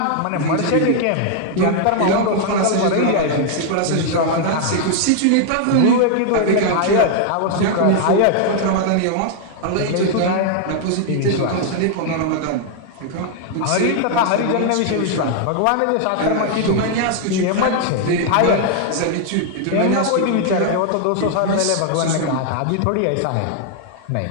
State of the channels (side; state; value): both; different; correlation 0.00